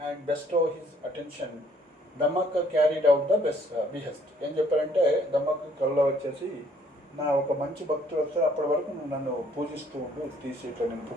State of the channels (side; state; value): both; normal; correlation 0.63